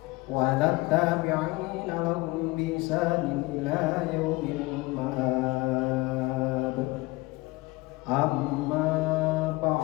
wa ala tabi'ina lahum bi ihsanin ila yaumil ma'ab. Amma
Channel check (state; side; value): quieter; right; 22.5 dB